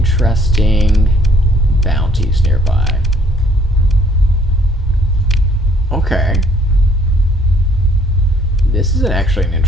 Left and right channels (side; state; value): both; normal; correlation 0.62